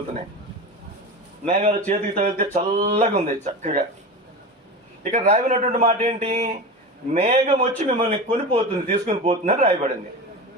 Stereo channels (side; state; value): both; normal; correlation 0.26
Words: చేతికి తగిలితే చల్లగా ఉంది, చక్కగా. ఇక్కడ రాయబడినటువంటి మాట ఏంటి? మేఘం వచ్చి మిమ్మల్ని కొనిపోతుంది, తీసుకుని పోతుందని రాయబడింది.